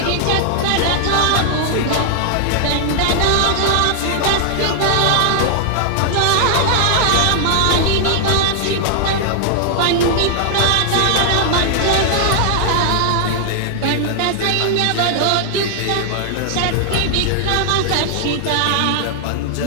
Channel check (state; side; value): different; both; correlation 0.00